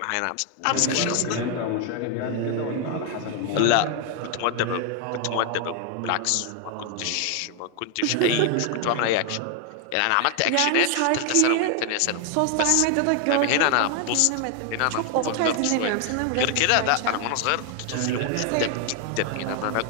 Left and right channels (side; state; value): both; different; correlation 0.01